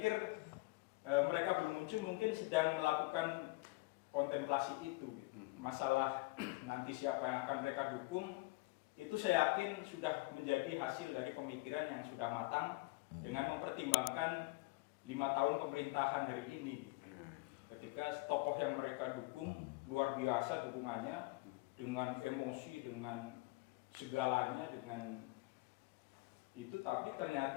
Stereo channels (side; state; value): right; quieter; 23.7 dB